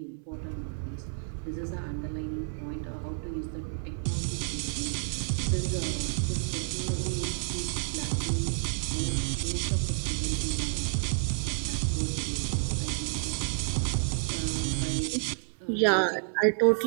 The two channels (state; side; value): silent; left; digital silence